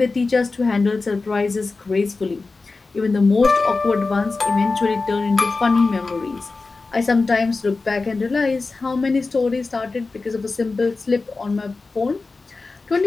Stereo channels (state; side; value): quieter; right; 3.8 dB